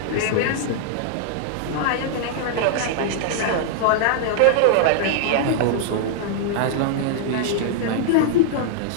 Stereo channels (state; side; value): different; both; correlation -0.01